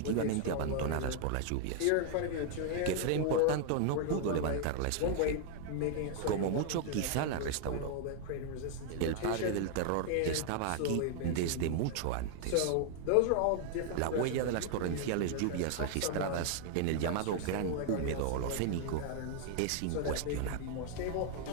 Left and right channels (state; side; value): different; both; correlation 0.00